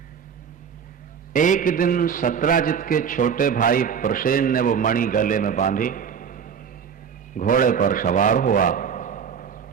एक दिन सत्राजित के छोटे भाई प्रसेन ने वो मणि गले में बांधी, घोड़े पर सवार हुआ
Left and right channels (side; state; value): left; quieter; 7.2 dB